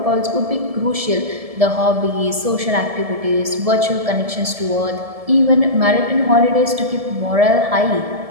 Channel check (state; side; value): late; left; 1.7 ms